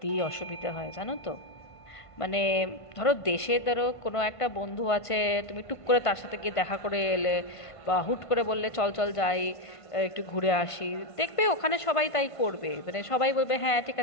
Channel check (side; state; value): right; late; 1.5 ms